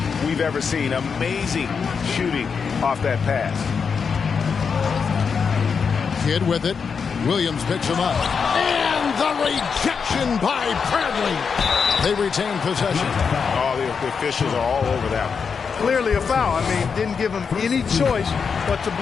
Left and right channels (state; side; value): quieter; right; 5.9 dB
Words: we've ever seen. Amazing shooting off that pass. Kidd with it. Williams picks him up. And the rejection by Bradley. They retain possession. Oh, the officials are all over that one. Clearly a foul. I mean, didn't give him any choice but to